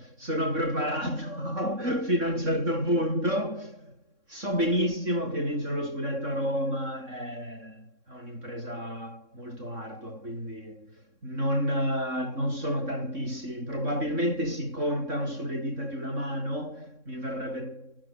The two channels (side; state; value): left; late; 3.6 ms